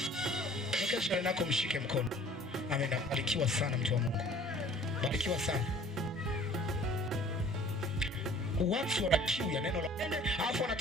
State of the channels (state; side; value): normal; both; correlation 0.51